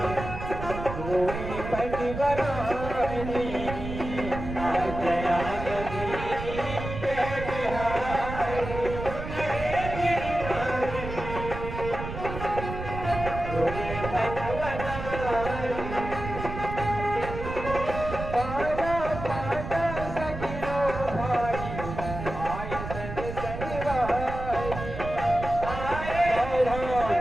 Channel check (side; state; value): right; noise; rumble, 7 dB below the sound